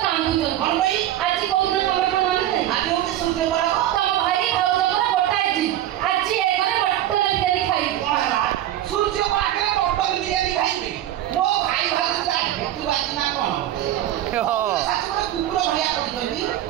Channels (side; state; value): left; quieter; 12.8 dB